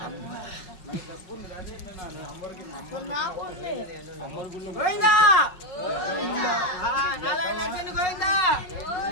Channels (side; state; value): right; late; 5.4 ms